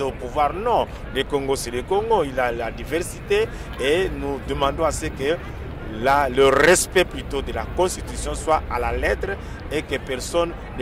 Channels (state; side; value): identical; both; correlation 1.00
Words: au pouvoir. Non, le Congo c'est le Congo, il a la diversité et nous demandons à ce que le respect plutôt de la Constitution soit à la lettre et que personne